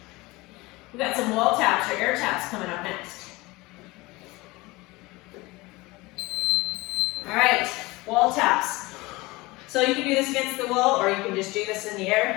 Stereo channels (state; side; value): quieter; right; 21.9 dB